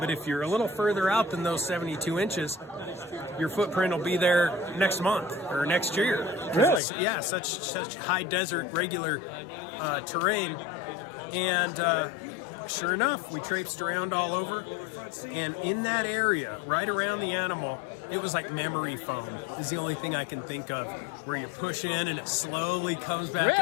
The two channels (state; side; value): drops out; right; at 6.8 s